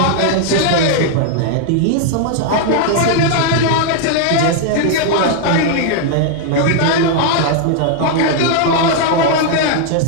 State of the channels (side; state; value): both; different; correlation 0.00